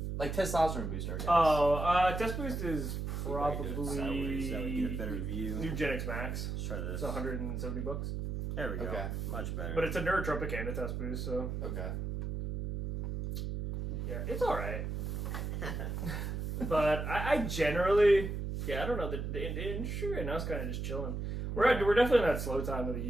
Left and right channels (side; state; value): right; noise; hum, 3 dB below the sound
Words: Like testosterone booster, I guess. Oh, test boost is probably get a better review. New Genix Max. Let's try this. It's $170. There we go. Okay. Much better. But it's a neurotropic and a test boost, so. Okay. Yeah, it's alright. But I generally, I don't know, the industry right now is kind of just chilling. We're definitely in that slow time of the